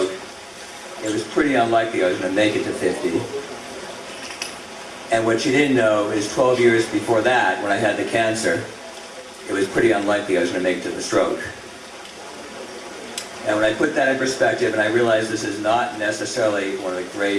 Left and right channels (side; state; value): both; identical; correlation 1.00